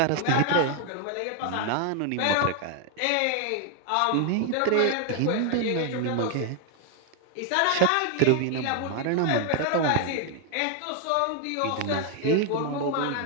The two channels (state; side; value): different; both; correlation 0.00